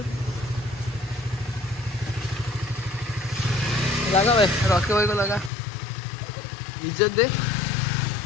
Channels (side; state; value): right; drops out; at 5.5 s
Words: लगा भाई रॉकी भाई को लगा इज्जत दे